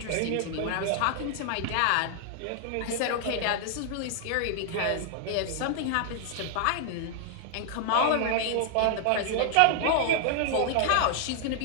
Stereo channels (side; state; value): both; different; correlation -0.01